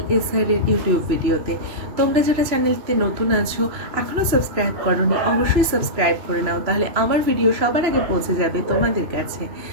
SR এর ইউটিউব ভিডিওতে। তোমরা যারা চ্যানেলটিতে নতুন আছো, এখনো সাবস্ক্রাইব করোনি, অবশ্যই সাবস্ক্রাইব করে নাও, তাহলে আমার ভিডিও সবার আগে পৌঁছে যাবে তোমাদের কাছে।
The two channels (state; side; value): late; left; 3.0 ms